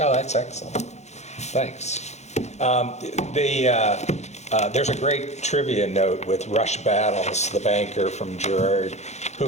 that's excellent. Thanks. There's a great trivia note with Rush Battles, the banker from Girard,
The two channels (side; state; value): right; late; 0.33 ms